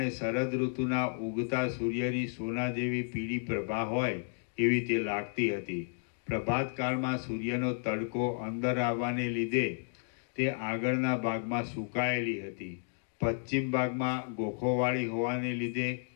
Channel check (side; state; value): right; silent; 56 dB below the other